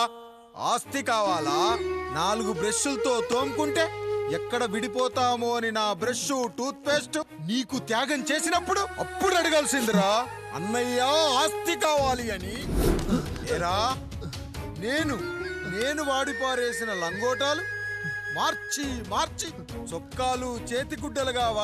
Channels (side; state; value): both; identical; correlation 1.00